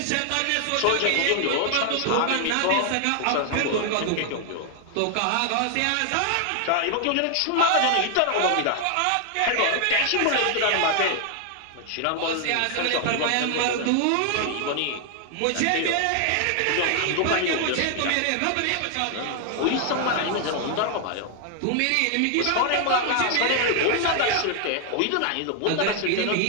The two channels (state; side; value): different; both; correlation 0.00